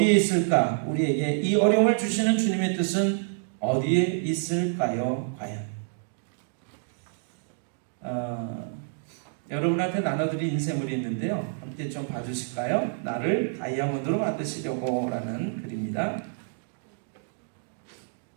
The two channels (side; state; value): left; silent; digital silence